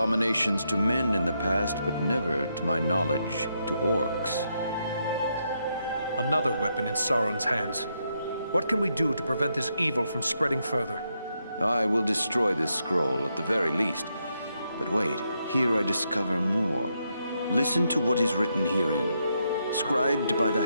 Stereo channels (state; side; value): inverted; both; correlation -0.80